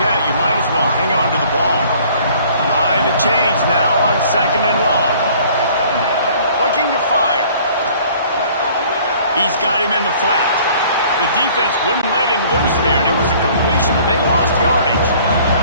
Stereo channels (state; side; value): inverted; both; correlation -0.54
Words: you might as well hang on to the ball. Behind the chains now on second and long. Looking to fire. He's got him in the flat. The defense wouldn't let him loose there, and it was a completion, but they lost yardage.